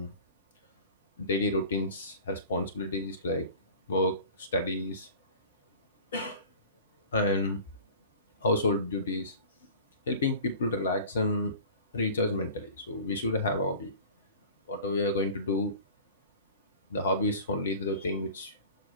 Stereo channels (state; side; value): inverted; both; correlation -0.41